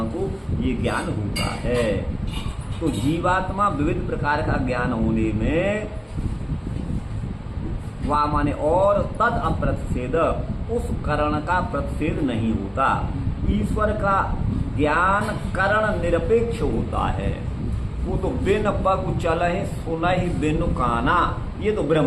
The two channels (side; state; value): both; identical; correlation 1.00